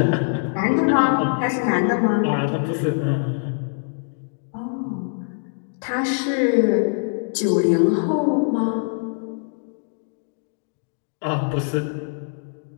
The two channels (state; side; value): silent; right; digital silence